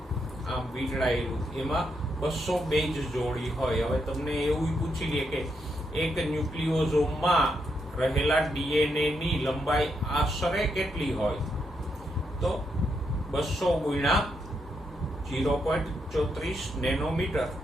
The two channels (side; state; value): both; normal; correlation 0.80